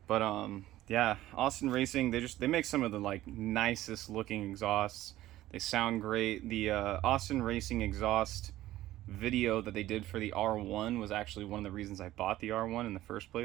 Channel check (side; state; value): left; quieter; 15.1 dB